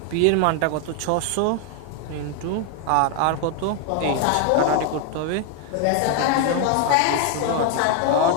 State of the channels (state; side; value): different; both; correlation 0.01